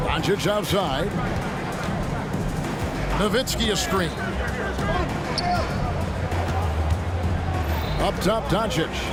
Doncic outside. Nowitzki a screen. Up top, Doncic.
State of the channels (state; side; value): identical; both; correlation 1.00